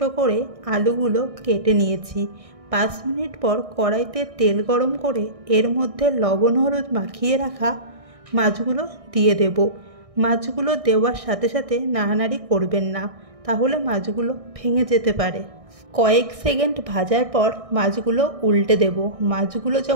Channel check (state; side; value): late; left; 1.6 ms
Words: করে আলুগুলো কেটে নিয়েছি। 5 মিনিট পর কড়াইতে তেল গরম করে এর মধ্যে লবণ হলুদ মাখিয়ে রাখা মাছগুলো দিয়ে দেব। মাছগুলো দেওয়ার সাথে সাথে নাড়ানাড়ি করবেন না, তাহলে মাছগুলো ভেঙে যেতে পারে। কয়েক সেকেন্ড ভাজার পর মাছগুলো উল্টে দেব। মাছগুলো